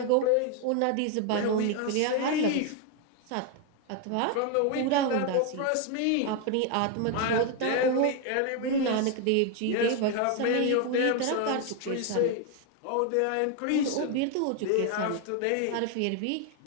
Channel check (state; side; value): different; both; correlation 0.01